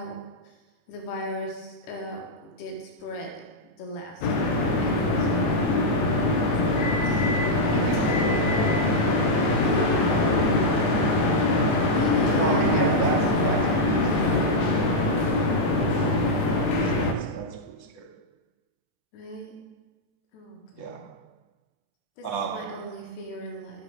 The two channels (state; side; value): late; right; 18 ms